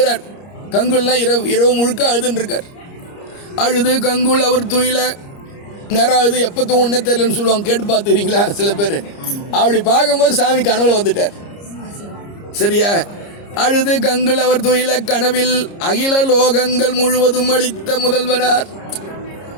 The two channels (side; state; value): right; late; 30 ms